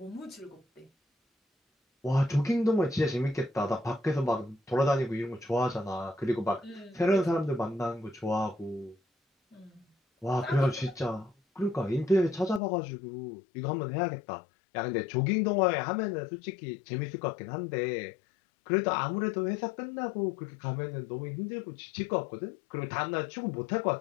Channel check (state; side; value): drops out; right; at 12.6 s